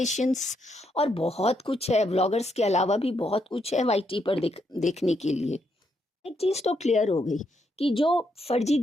और बहुत कुछ है, व्लॉगर्स के अलावा भी बहुत कुछ है वाईटी पर देखने के लिए। एक चीज़ तो क्लियर हो गई कि जो फर्जी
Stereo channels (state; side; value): normal; both; correlation 0.78